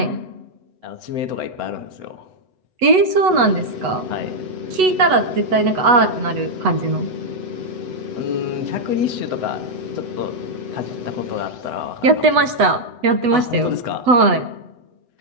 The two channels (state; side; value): late; left; 8.0 ms